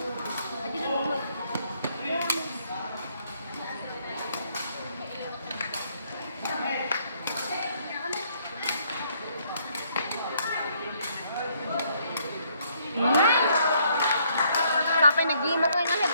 Adi na mo. Sapay nag-game ako yung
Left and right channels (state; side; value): inverted; both; correlation -0.68